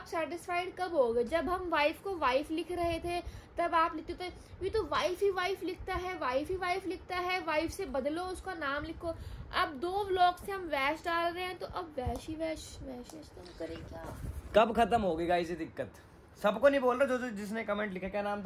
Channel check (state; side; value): identical; both; correlation 1.00